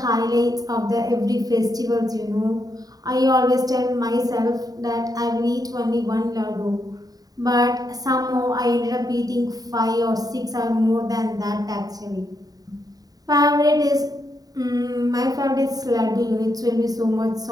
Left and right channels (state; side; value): late; left; 0.18 ms